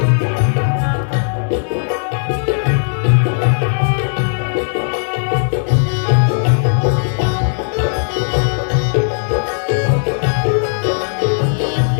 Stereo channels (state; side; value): silent; right; 65 dB below the other